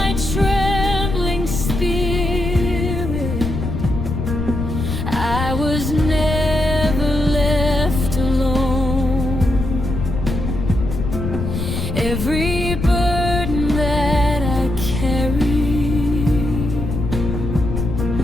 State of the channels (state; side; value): noise; left; rumble, 3 dB below the sound